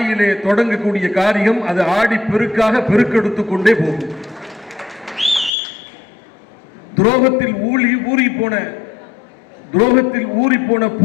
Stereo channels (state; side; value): drops out; right; at 5.5 s